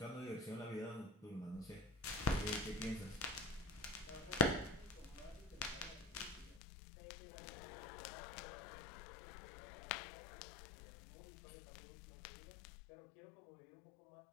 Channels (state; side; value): drops out; right; at 6.6 s